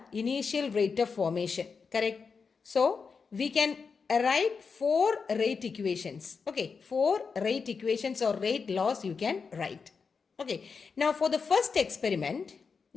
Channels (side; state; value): right; quieter; 5.3 dB